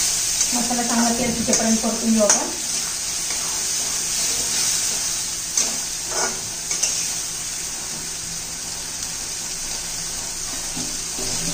मसाला चांगला तेल सुटेपर्यंत परतून घेऊ आपण.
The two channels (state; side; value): identical; both; correlation 1.00